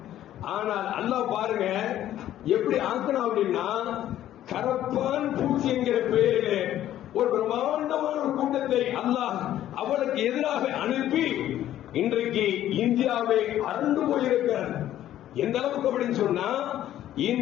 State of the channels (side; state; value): right; quieter; 12.4 dB